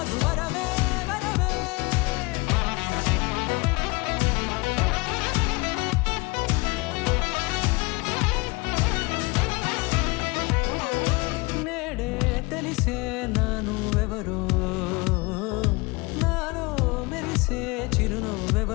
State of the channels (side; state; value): right; quieter; 25.1 dB